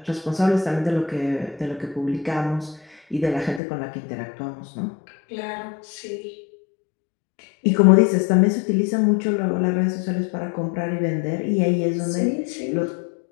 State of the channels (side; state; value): right; drops out; at 3.6 s